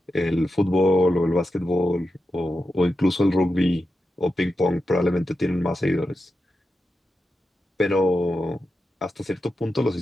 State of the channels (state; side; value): normal; both; correlation 0.89